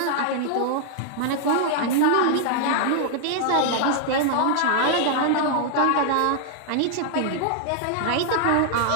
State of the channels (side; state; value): both; different; correlation -0.01